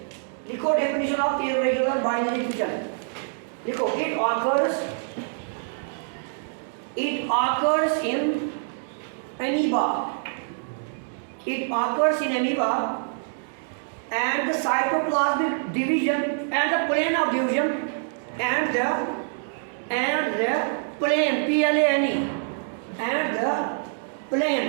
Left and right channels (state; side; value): silent; left; digital silence